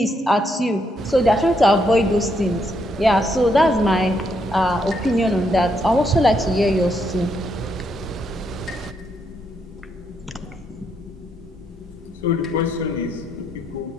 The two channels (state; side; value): normal; both; correlation 0.76